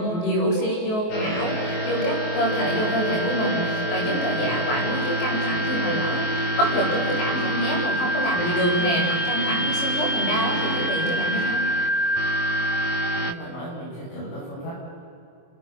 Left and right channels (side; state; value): right; late; 23 ms